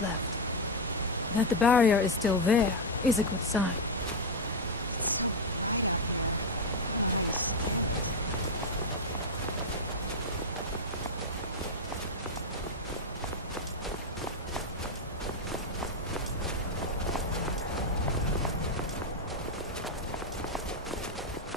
left. That the barrier is still there is a good sign.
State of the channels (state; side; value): normal; both; correlation 0.05